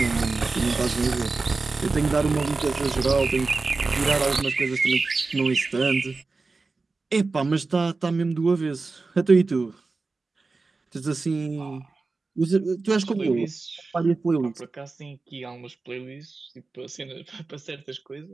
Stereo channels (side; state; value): left; quieter; 3.8 dB